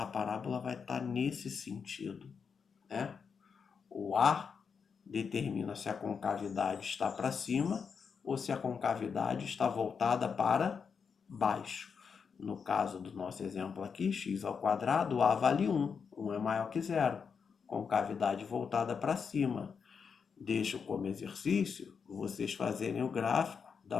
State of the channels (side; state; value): right; quieter; 6.1 dB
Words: parábola vai estar nesse sentido, né? O A determina se a concavidade está para cima ou se a concavidade está voltada para baixo. No caso do nosso exemplo aqui, x ao quadrado, a vale 1. 1 é maior que zero. Concavidade voltada para cima. Deixo como exercício, vocês fazerem o gráfico